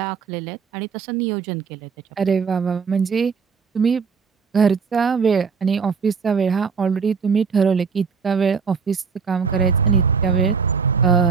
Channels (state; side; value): quieter; left; 5.7 dB